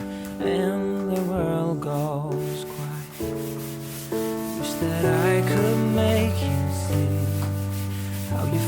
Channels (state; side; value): identical; both; correlation 1.00